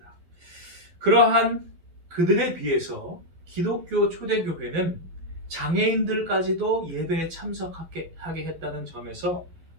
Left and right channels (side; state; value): left; late; 12 ms